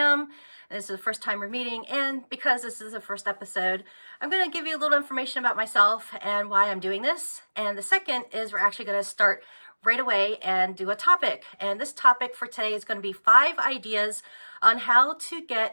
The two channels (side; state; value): both; inverted; correlation -1.00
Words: this is the first time we're meeting. And because this is the first episode, I'm going to give you a little information about myself and why I'm doing this. And the second is we're actually going to start right away and do a topic. And this topic for today is going to be 5 ideas on how to